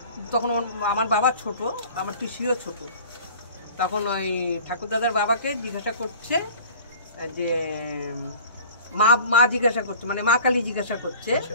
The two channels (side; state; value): both; inverted; correlation -0.44